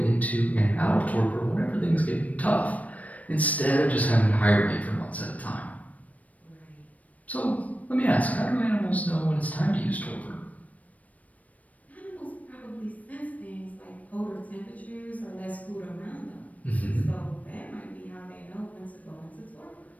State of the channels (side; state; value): right; late; 0.070 ms